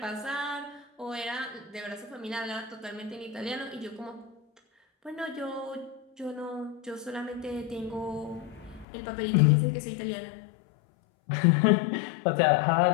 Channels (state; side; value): drops out; right; at 8.8 s